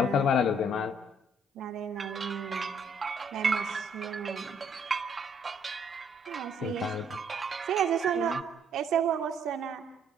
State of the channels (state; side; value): normal; both; correlation 0.66